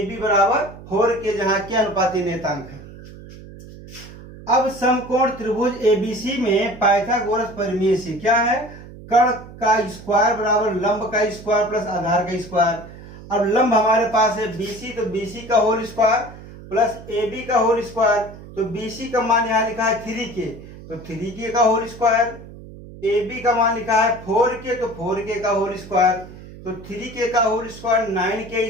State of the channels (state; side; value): noise; right; hum, 16 dB below the sound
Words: बराबर 4 के, जहां के अनुपाती नेतांक है। अब समकोण त्रिभुज ABC में पाइथागोरस परिमेय से क्या है, कर्ण का स्क्वायर बराबर लंब का स्क्वायर प्लस आधार का स्क्वायर। अब लंब हमारे पास है BC, तो BC का होल स्क्वायर प्लस AB का होल स्क्वायर। तो BC का मान यहाँ लिखा है 3K, तो 3K का होल स्क्वायर। AB का मान लिखा है 4K, तो 4K का होल स्क्वायर। तो 3K का whole square